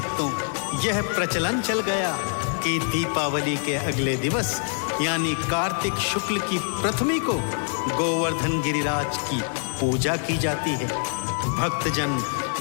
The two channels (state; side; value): silent; right; 59 dB below the other